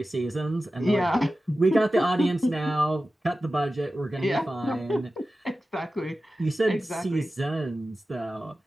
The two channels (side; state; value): both; normal; correlation 0.94